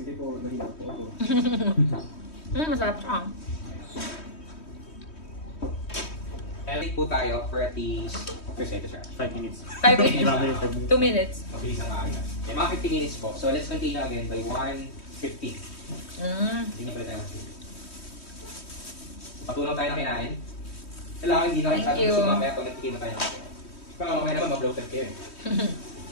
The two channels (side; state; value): right; late; 3.1 ms